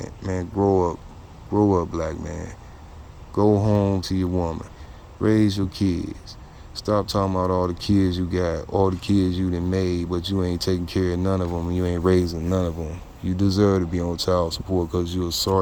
man. Grow up, black man. Go home to your woman. Raise your kids. Stop talking about all the kids you got, all the kids you done made, but you ain't taking care of none of them, and you ain't raising none of them. You deserve to be on child support because you're a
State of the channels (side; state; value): both; identical; correlation 1.00